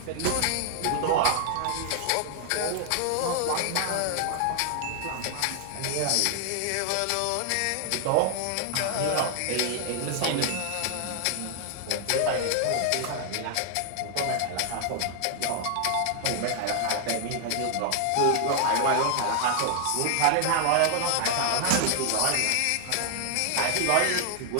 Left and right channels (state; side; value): different; both; correlation 0.00